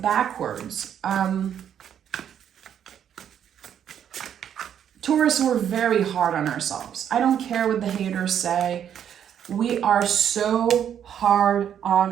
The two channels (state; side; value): quieter; left; 9.2 dB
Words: Taurus, we're very hard on ourselves. I don't care what the haters say. We are so hard